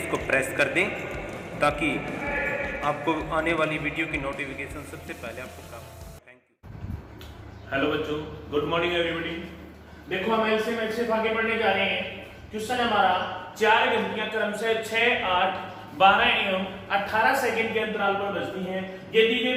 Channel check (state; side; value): identical; both; correlation 1.00